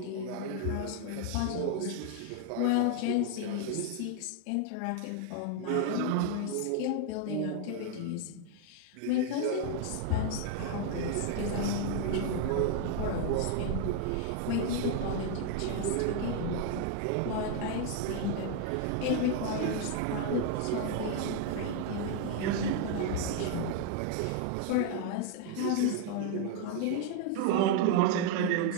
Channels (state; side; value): different; both; correlation 0.00